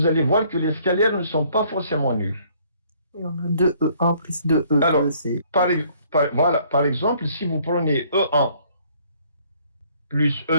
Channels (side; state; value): both; inverted; correlation -0.62